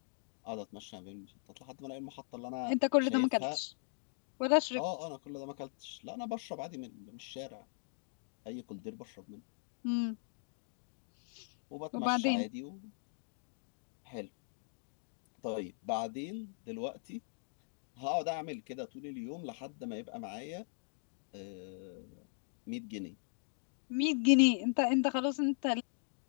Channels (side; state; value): right; silent; digital silence